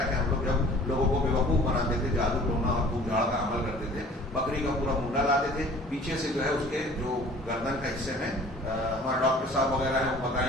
کہ ہم لوگ جب لوگوں کو بیوقوف بناتے تھے, جادو ٹونا اور پھوک جھاڑ کا عمل کرتے تھے, بکری کا پورا منڈا لاتے تھے, پیچھے سے جو ہے اس کے جو گردن کا حصے میں, ہمارے ڈاکٹر صاحب وغیرہ ہیں وہ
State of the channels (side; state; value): both; normal; correlation 0.49